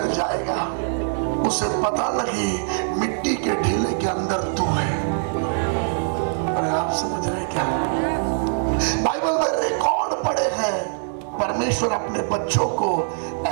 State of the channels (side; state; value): left; silent; digital silence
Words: जाएगा। उसे पता नहीं मिट्टी के ढीले के अंदर तू है। अरे आप समझ रहे क्या? बाइबल में रिकॉर्ड पड़े हैं, परमेश्वर अपने बच्चों को